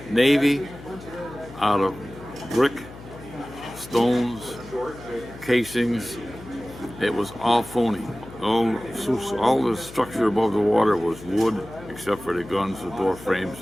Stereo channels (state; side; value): noise; left; hum, 16 dB below the sound